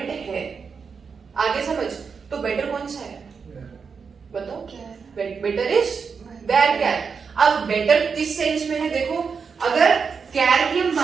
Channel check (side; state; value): left; quieter; 5.7 dB